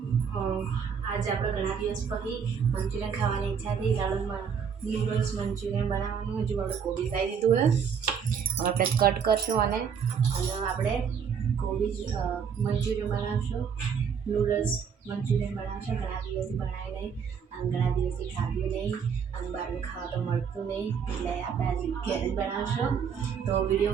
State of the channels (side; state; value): left; quieter; 6.9 dB